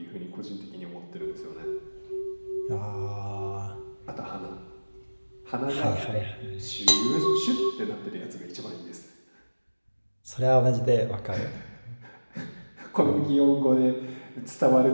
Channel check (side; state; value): both; inverted; correlation -1.00